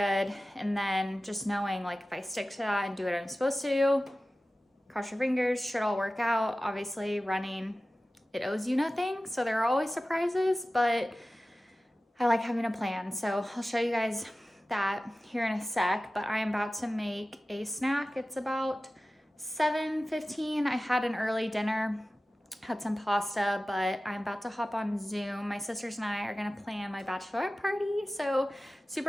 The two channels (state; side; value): normal; both; correlation 0.96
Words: And then just knowing like if I stick to that and do what I'm supposed to do, cross your fingers, should all work out. Obviously running, it owes you nothing. So there are always surprises, but I like having a plan. So I'll show you guys that here in a sec, but I am about to make a snack. It's about 7:15. I had an early dinner, had some pasta, but I'm about to hop on Zoom. My sisters and I are gonna plan my bachelorette party. So